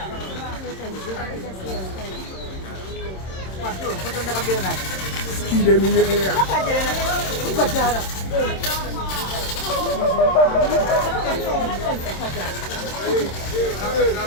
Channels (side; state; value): right; late; 26 ms